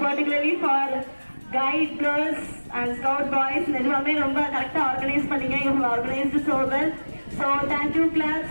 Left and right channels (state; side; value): inverted; both; correlation -1.00